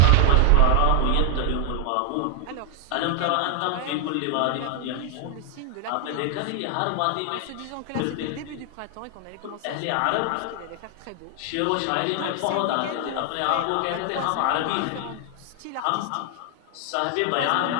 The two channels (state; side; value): different; both; correlation 0.00